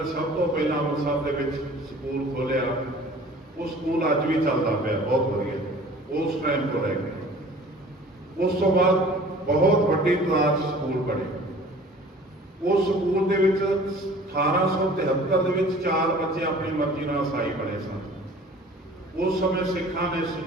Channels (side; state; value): both; normal; correlation 0.47